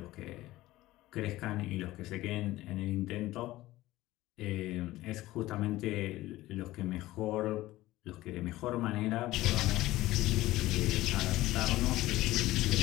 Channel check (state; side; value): quieter; right; 17.0 dB